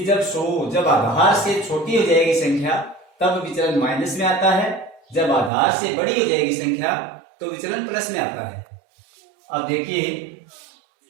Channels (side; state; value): left; drops out; at 5.5 s